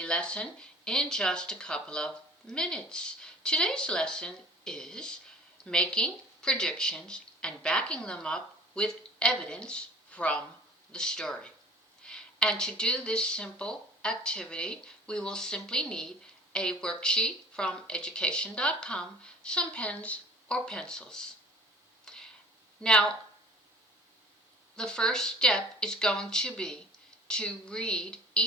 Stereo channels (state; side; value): normal; both; correlation 0.47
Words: lesson in just a couple of minutes. Today's lesson is making predictions and backing them up with evidence from the story. And to do this simple activity, we will simply need a worksheet from education.com, some pens or pencils. Now, the first step is going to be to read